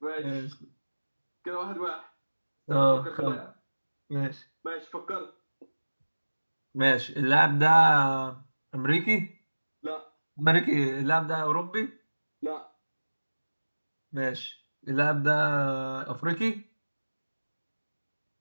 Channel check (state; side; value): inverted; both; correlation -1.00